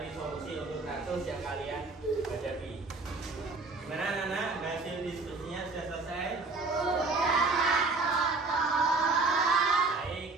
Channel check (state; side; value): quieter; left; 3.7 dB